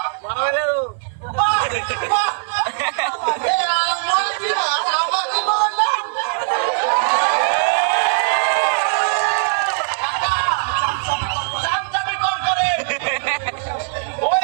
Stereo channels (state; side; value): silent; left; 55 dB below the other